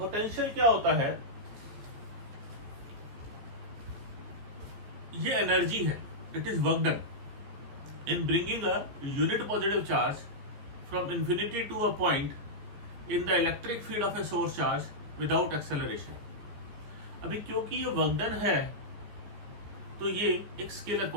क्या होता है? ये एनर्जी है, it is work done in bringing a unit positive charge from infinity to a point in the electric field of a source charge without acceleration। अभी क्योंकि ये work done है तो ये एक स्केलर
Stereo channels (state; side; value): late; left; 14 ms